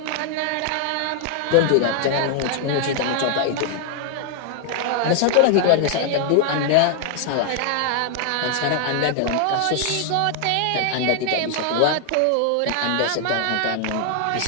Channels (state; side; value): different; both; correlation 0.00